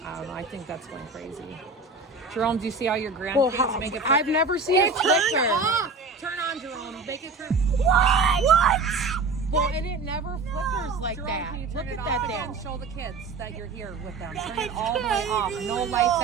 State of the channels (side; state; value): left; quieter; 4.0 dB